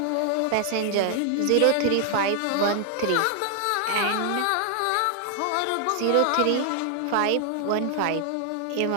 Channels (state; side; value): different; both; correlation 0.00